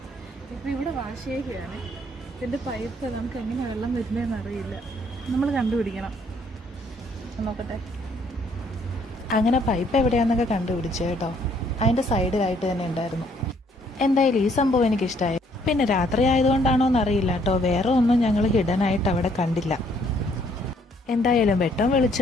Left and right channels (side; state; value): both; normal; correlation 0.66